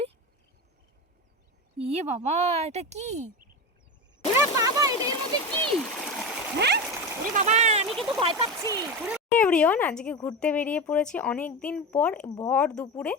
ইয়ে বাবা, এটা কি? ওরে বাবা, এটা এর মধ্যে কি? হ্যাঁ, ওরে বাবা, আমি কিন্তু ভয় পাচ্ছি। এভরিওয়ান, আজকে ঘুরতে বেরিয়ে পড়েছি অনেক দিন পর ভর দুপুরে।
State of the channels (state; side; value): normal; both; correlation 0.21